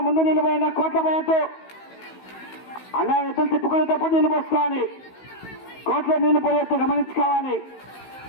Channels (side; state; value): right; late; 16 ms